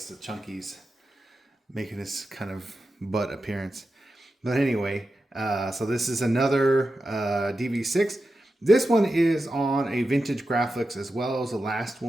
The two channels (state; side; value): normal; both; correlation 0.91